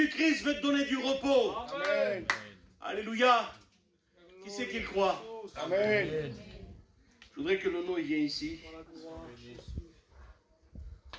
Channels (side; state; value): both; identical; correlation 1.00